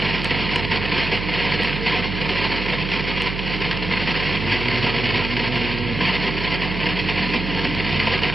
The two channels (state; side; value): noise; right; hum, 5 dB below the sound